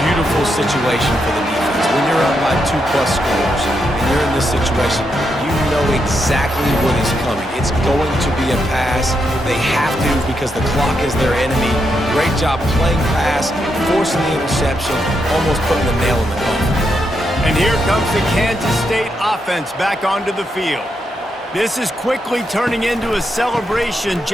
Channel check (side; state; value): both; normal; correlation 0.82